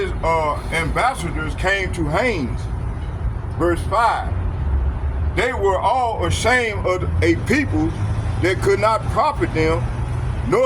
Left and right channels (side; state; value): both; identical; correlation 1.00